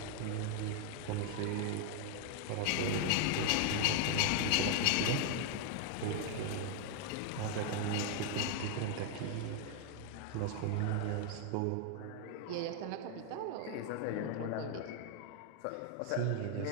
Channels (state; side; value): different; both; correlation 0.00